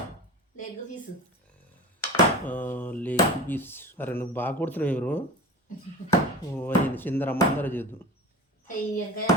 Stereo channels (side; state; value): both; normal; correlation 0.34